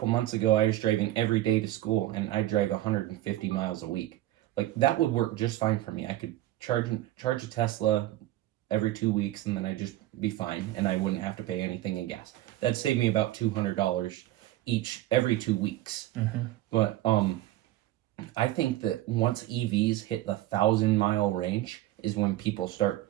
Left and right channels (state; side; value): quieter; left; 15.0 dB